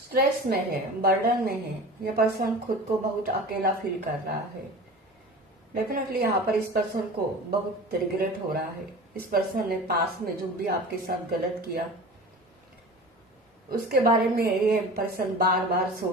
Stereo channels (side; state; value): both; normal; correlation 0.37